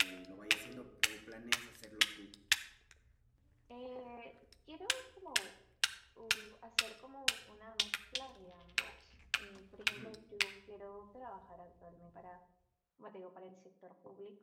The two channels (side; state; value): both; identical; correlation 1.00